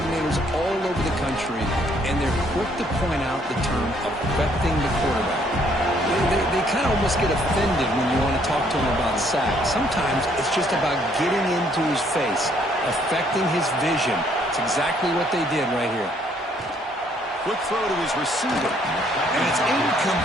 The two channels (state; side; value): normal; both; correlation 0.66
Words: all over the country, and they're quick to point out the term affecting the quarterback. They kind of almost get offended when you want to talk to them about sacks. Sometimes it's just about getting into his face, affecting his vision. It's exactly what they did right here. Quick throw to his receiver. And it's